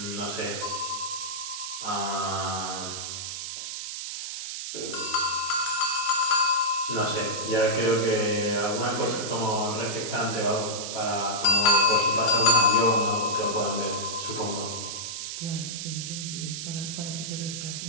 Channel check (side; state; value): right; noise; hiss, 6 dB below the sound